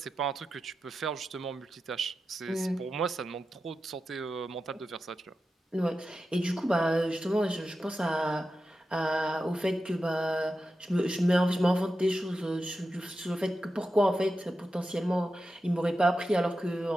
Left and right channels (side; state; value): both; normal; correlation 0.91